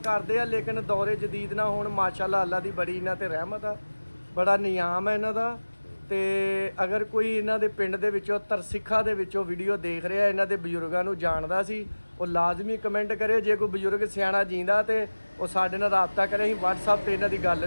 ਆ, ਲੇਕਿਨ ਦੌਰੇ ਜਦੀਦ ਨਾਲ ਹੁਣ ਮਾਸ਼ਾਅੱਲਾ ਅੱਲਾ ਦੀ ਬੜੀ ਇਹਨਾਂ ਤੇ ਰਹਿਮਤ ਆ, ਬੜਾ ਨਿਯਾਮ ਹੈ ਇਹਨਾਂ ਦਾ। ਤੇ ਅਗਰ ਕੋਈ ਇਹਨਾਂ ਦੇ ਪਿੰਡ ਦੇ ਵਿੱਚੋਂ ਤਰਸਿੱਖਾ ਦੇ ਵਿੱਚੋਂ ਵੀਡੀਓ ਦੇਖ ਰਿਹਾ, ਇਹਨਾਂ ਦੇ ਬਜ਼ੁਰਗਾਂ ਨੂੰ ਜਾਣਦਾ ਸੀ, ਉਹ ਲਾਜ਼ਮੀ ਕਮੈਂਟ ਕਰੇ। ਜੇ ਕੋਈ ਬਜ਼ੁਰਗ ਸਿਆਣਾ ਜੀਂਦਾ ਤੇ ਉਹ ਸਾਡੇ ਨਾਲ ਰਾਬਤਾ ਕਰੇ, ਅਸੀਂ WhatsApp ਤੇ ਇਹਨਾਂ ਦੀ ਗੱਲ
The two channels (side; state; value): both; inverted; correlation -1.00